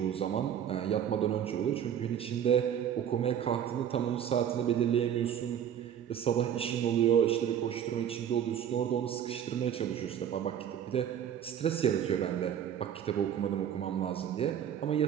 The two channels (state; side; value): quieter; left; 9.4 dB